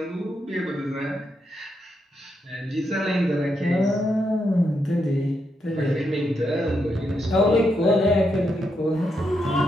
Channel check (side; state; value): both; normal; correlation 0.82